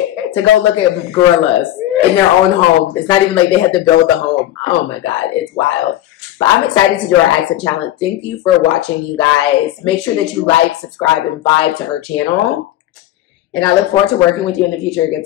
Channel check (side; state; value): right; quieter; 13.7 dB